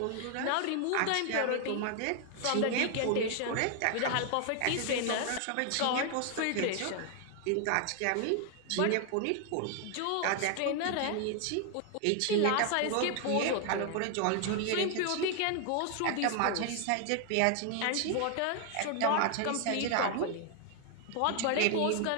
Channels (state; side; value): different; both; correlation 0.00